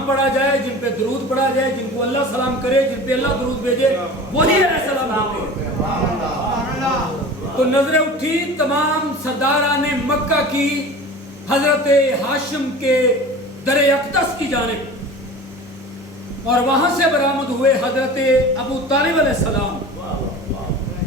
پڑھا جائے، جن پہ درود پڑھا جائے، جن کو اللہ سلام کرے، جن پہ اللہ درود بھیجے، وہی علیہ السلام ہوتے ہیں۔ تو نظریں اٹھی تمام سرداران مکہ کی حضرت ہاشم کے در اقدس کی جانب، اور وہاں سے برآمد ہوئے حضرت ابو طالب علیہ السلام،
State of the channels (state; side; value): normal; both; correlation 0.37